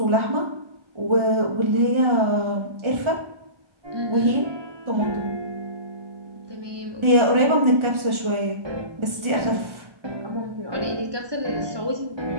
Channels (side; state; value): left; late; 1.4 ms